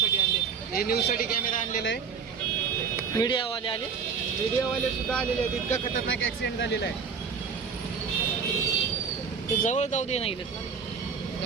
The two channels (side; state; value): left; quieter; 6.0 dB